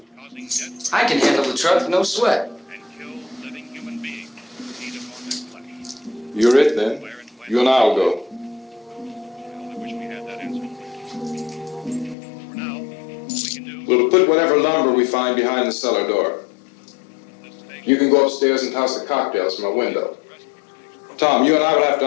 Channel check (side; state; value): right; drops out; at 12.2 s